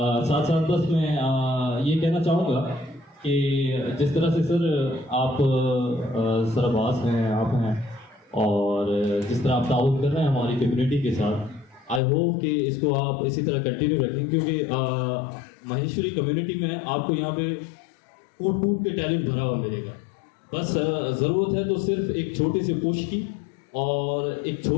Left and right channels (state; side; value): drops out; right; at 12.0 s